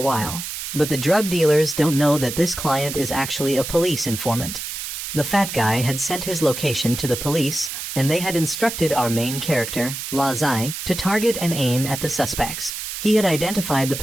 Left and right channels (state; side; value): noise; right; hiss, 6 dB below the sound